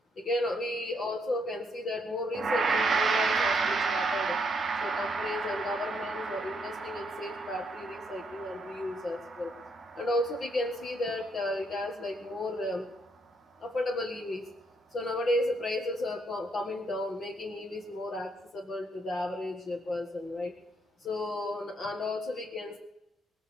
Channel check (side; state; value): both; normal; correlation 0.74